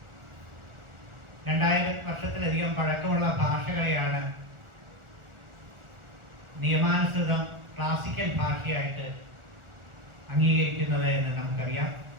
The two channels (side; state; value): left; late; 1.4 ms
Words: 2000 വർഷത്തിലധികം പഴക്കമുള്ള ഭാഷകളെയാണ് നിയമാനുസൃതം ക്ലാസിക്കൽ ഭാഷയായിട്ട് അംഗീകരിക്കുന്നത് എന്ന് നമുക്കറിയാം.